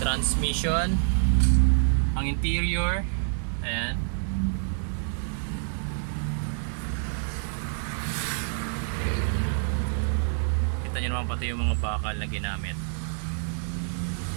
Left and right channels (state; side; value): silent; left; digital silence